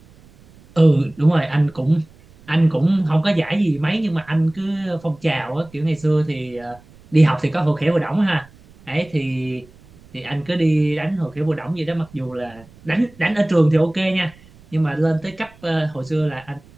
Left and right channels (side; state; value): right; noise; rumble, 25 dB below the sound